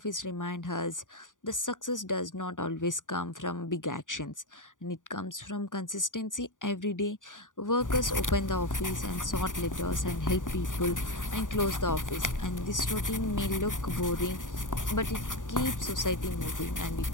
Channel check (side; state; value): right; late; 0.88 ms